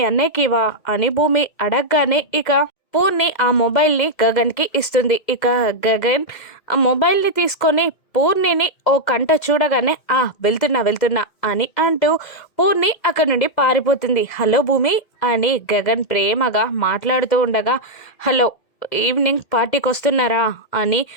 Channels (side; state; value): right; late; 2.0 ms